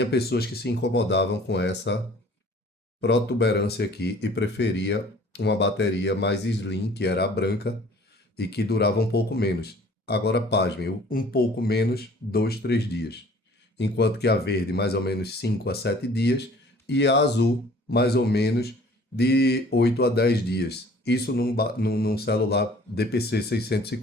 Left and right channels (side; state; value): both; normal; correlation 0.51